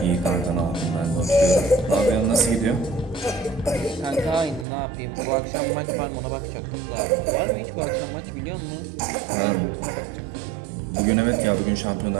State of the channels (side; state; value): left; drops out; at 4.7 s